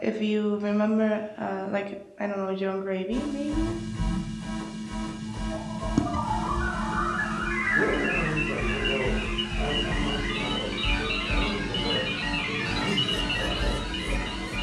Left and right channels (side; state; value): both; identical; correlation 1.00